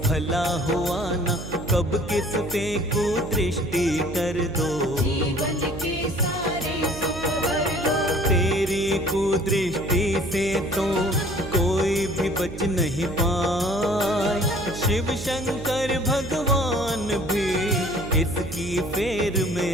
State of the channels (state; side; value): noise; right; hum, 10 dB below the sound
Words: भला हुआ ना, कब किस पे कुदृष्टि कर दो, जीवन के सारे सुख भर लो। तेरी कुदृष्टि से तो कोई भी बच नहीं पाए, शिव शंकर भगवान भी इसकी फेर